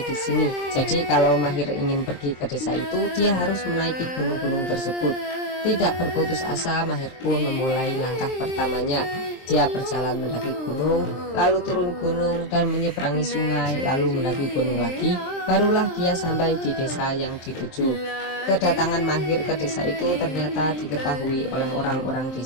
di sini. Jadi kalau Mahir ingin pergi ke desa itu, dia harus menaiki gunung-gunung tersebut. Tidak berputus asa, Mahir pun memulai langkah pertamanya. Dia berjalan mendaki gunung, lalu turun gunung dan menyeberangi sungai, lalu mendaki gunung lagi. Barulah dia sampai di desa yang dituju. Kedatangan Mahir ke desa itu ternyata diketahui oleh orang-orang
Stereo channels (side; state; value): right; late; 23 ms